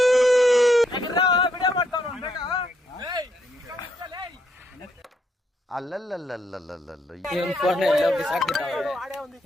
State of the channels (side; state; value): both; normal; correlation 0.75